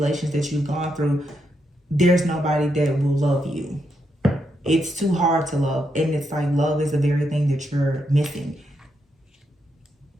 that you've gone through, there's nobody that will love you. It's too hard to love. And it's like love is the very thing that you're missing.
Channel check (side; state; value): both; normal; correlation 0.81